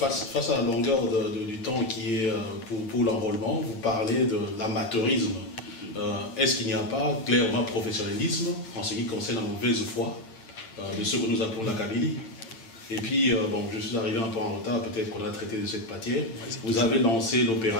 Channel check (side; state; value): right; late; 8.8 ms